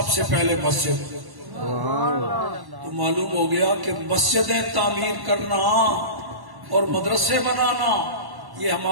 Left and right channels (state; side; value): late; left; 1.1 ms